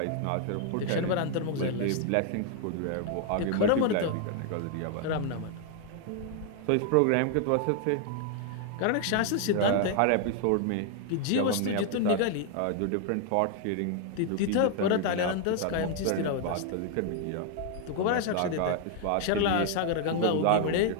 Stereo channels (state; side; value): different; both; correlation 0.00